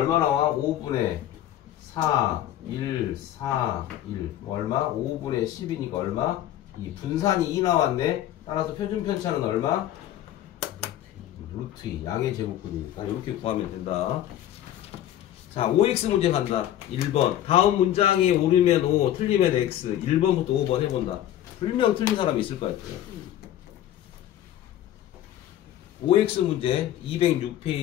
나와? 5분의 4, 1, 4, 1. 얼마? 5분의 10이니까 얼마? 2. 분산이 2 나왔네. 따라서 표준 편차는 얼마? 루트 2. 양의 제곱근이니까 이렇게 구하면 된다. 자, 5x 문제 간다. 1번. 다음 문장이 옳으면 5, 틀리면 x. 1번부터 5번 해본다. 분명 틀린 사람이 있을 것 같아요. 5x 문제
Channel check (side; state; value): right; quieter; 12.2 dB